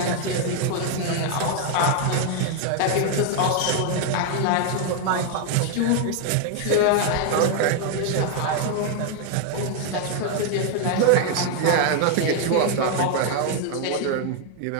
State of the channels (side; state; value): both; different; correlation 0.00